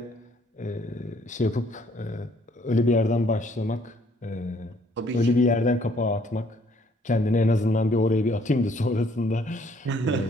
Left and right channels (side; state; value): both; normal; correlation 0.64